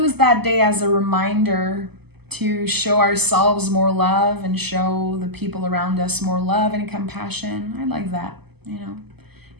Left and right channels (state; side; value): late; left; 0.97 ms